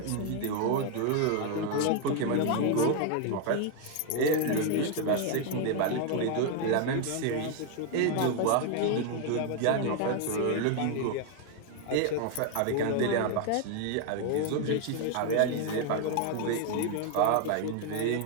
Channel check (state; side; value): different; both; correlation 0.00